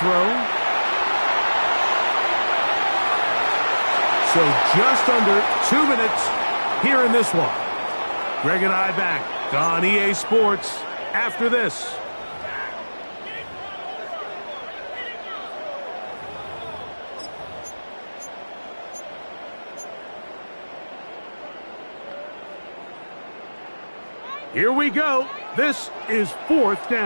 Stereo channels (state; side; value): inverted; both; correlation -1.00